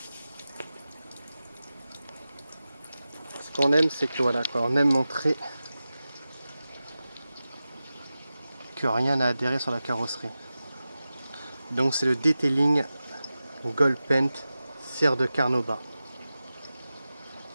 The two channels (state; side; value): inverted; both; correlation -0.94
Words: Ce qu'on aime, c'est que voilà, quoi, on aime montrer que rien n'a adhéré sur la carrosserie. Donc c'est le detailing Gold Paint cire de Carnauba.